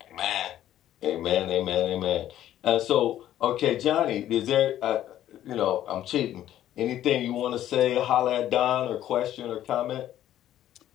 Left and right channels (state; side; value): quieter; right; 12.2 dB